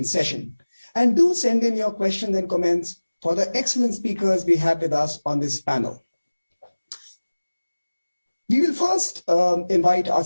session. And do send in your questions and comments for the excellent speakers we have with us on this panel. We will first invite our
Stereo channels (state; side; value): inverted; both; correlation -1.00